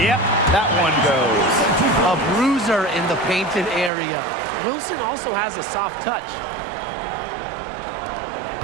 that one goes. A bruiser in the painted area. Wilson also has a soft touch.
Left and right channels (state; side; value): drops out; left; at 3.9 s